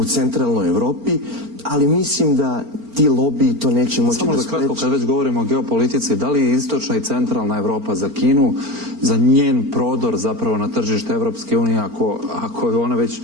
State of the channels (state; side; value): late; left; 4.4 ms